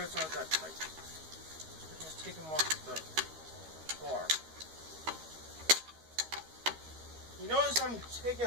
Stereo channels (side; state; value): left; late; 13 ms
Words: aren't that tight. I just take them off the bar. You notice I'm taking